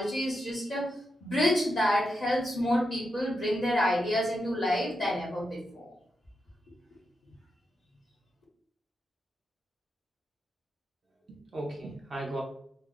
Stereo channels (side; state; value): both; normal; correlation 0.86